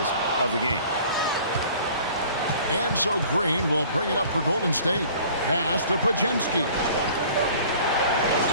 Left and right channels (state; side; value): inverted; both; correlation -0.49